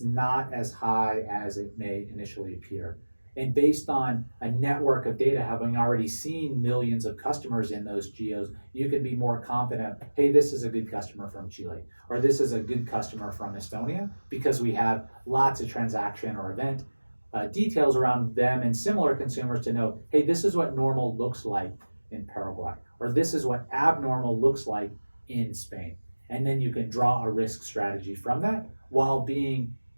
not as high as it may initially appear. And based on a network of data, having already seen millions of customers in those geos, you can be more confident, hey, this is a good customer from Chile, or this is a good customer from Estonia, because we have lots of transaction or event details around them and similar consumers to know, hey, this is what normal looks like in Paraguay, or this is what abnormal looks like in Spain. And then you can draw a risk strategy from that while being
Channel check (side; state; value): both; inverted; correlation -1.00